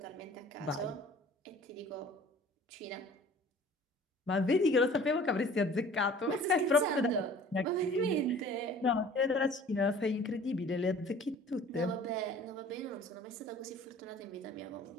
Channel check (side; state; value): both; normal; correlation 0.48